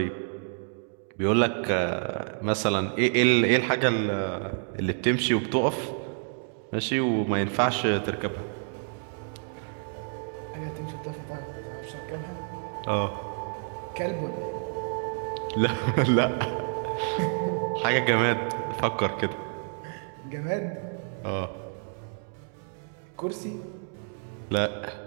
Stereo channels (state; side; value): silent; left; 59 dB below the other